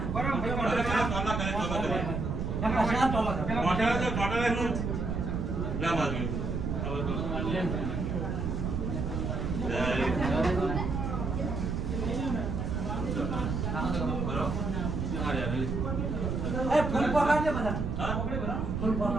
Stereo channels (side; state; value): right; noise; rumble, 2 dB below the sound